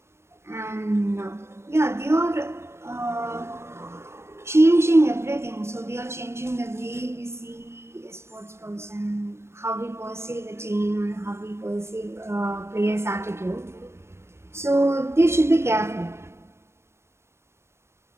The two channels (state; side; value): late; left; 0.13 ms